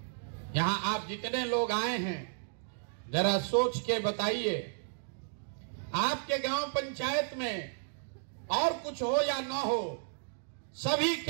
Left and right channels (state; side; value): silent; left; digital silence